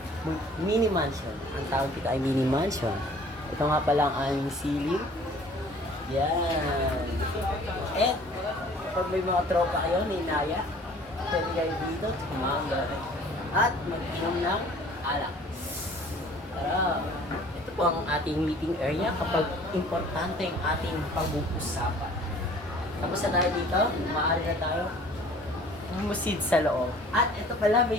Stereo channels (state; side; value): normal; both; correlation 0.51